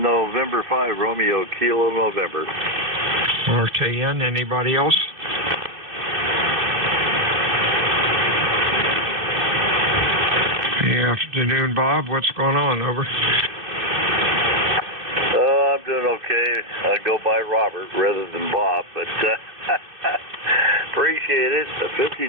5, Romeo, Kilo, November. RKN, anybody else? Good afternoon, Bob. What's going on? Over. I'm doing okay. I go by Robert rather than Bob, but appreciate it.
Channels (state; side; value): late; left; 2.7 ms